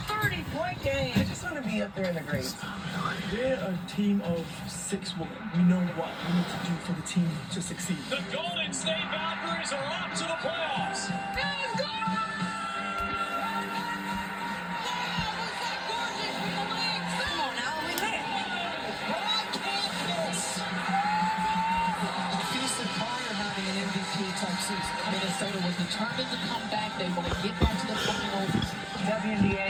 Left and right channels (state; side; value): identical; both; correlation 1.00